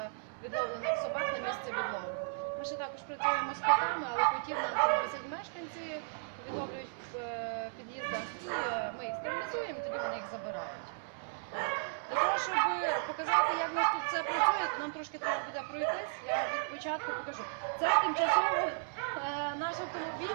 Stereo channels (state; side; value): silent; left; digital silence